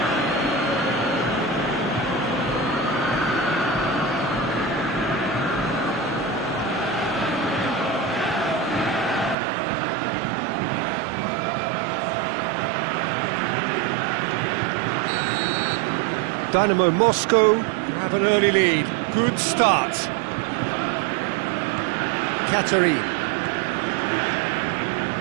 Dynamo Moscow have an early lead. Good start. Katerin.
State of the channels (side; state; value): left; drops out; at 9.3 s